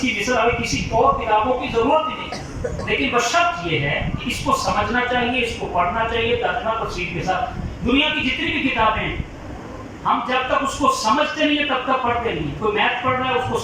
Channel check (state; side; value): identical; both; correlation 1.00